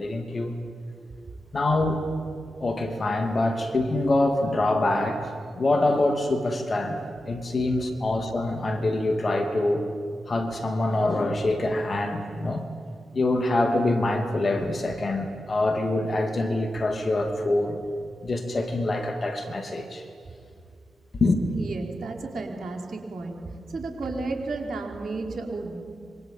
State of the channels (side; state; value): both; normal; correlation 0.91